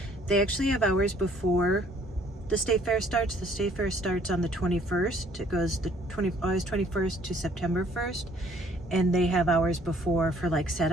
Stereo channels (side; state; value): both; normal; correlation 0.60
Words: they actually have hours before the state fair starts. The state fair starts on the 21st. It goes August 21st to September 1st. And they have hours before for like